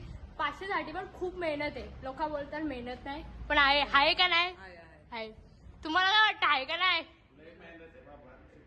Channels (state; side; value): identical; both; correlation 1.00